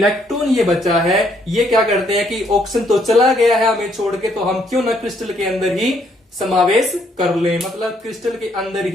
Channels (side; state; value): both; normal; correlation 0.69